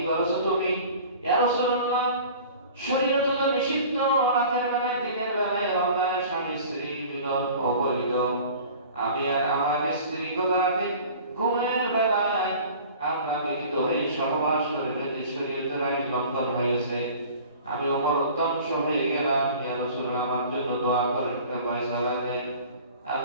করেছো তুমি? ইয়া রাসূলুল্লাহ, শরীয়ত তো নিষিদ্ধ রাতের বেলায় দিনের বেলায় রমজানের স্বামী স্ত্রী মিলন অবৈধ। আমি আর আমার স্ত্রী রাতে ঘুমের বেলায় আমরা মিলিত হয়ে সহবাস করে যদি শরীয়তের আইন লঙ্ঘন হয়েছে, আমি ওমর ধ্বংস হয়ে গেলাম। ইয়া রাসূলুল্লাহ, আমার জন্য দোয়া করেন, ফয়সালা দেন।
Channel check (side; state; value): both; inverted; correlation -0.44